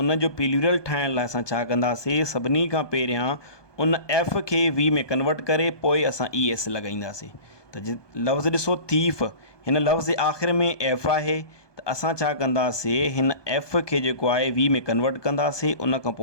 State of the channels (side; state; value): right; late; 1.2 ms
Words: जो प्लूरल ठाहिण लाइ असां छा कंदासीं, सभिनी खां पहिरियां उन एफ खे वी में कन्वर्ट करे पोइ असां ई एस लॻाईंदासीं। त लफ़्ज़ ॾिसो थीफ, हिन लफ़्ज़ जे आख़िर में एफ आहे त असां छा कंदासीं, हिन एफ खे जेको आहे वी में कन्वर्ट कंदासीं, उन खां